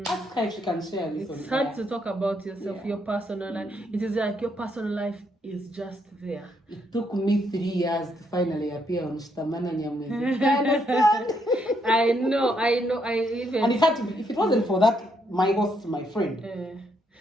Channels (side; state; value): both; normal; correlation 0.75